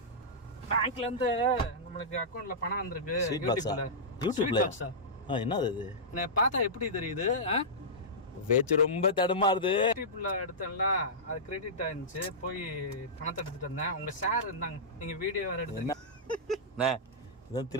பேங்க்ல இருந்து நம்மளுக்கு அக்கவுண்ட்ல பணம் வந்திருக்கு. யூடியூப்ல என்னது அது? நான் பார்த்தா எப்படி தெரியுது? பேச்சு ரொம்ப தடுமாறுது. யூடியூப்ல எடுத்தேன்ல, அது கிரெடிட் ஆயிருந்துச்சு. போய் பணத்தை எடுத்துட்டு வந்தேன். உங்க ஷேர் இருந்தாங்க, நீங்க வீடியோ வேற எடுத்தீங்க. என்ன இதான்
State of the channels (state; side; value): normal; both; correlation -0.14